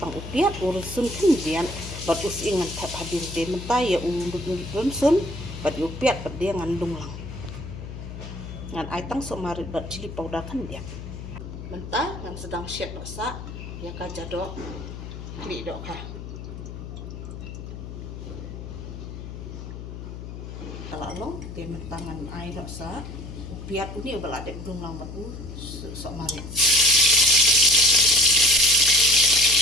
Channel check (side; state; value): left; noise; hum, 10 dB below the sound